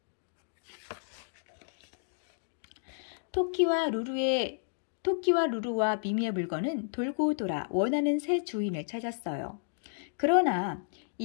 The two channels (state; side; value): silent; right; digital silence